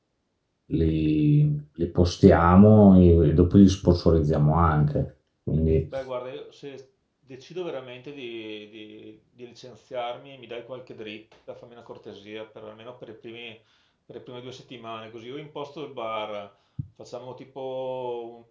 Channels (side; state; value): both; identical; correlation 1.00